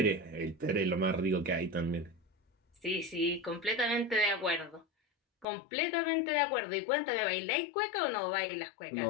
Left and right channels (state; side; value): drops out; right; at 5.5 s